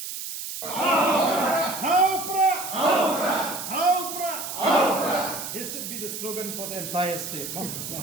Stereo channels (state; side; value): noise; right; hiss, 7 dB below the sound